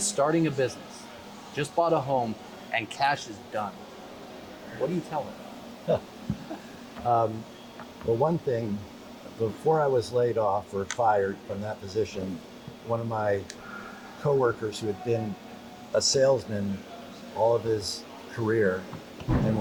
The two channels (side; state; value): both; identical; correlation 1.00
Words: starting a business, just bought a home, and cash is done. What do you tell them? Well, one thing, before I was laid off or fired from that position, one of my coworkers who had been a salesman all of his career and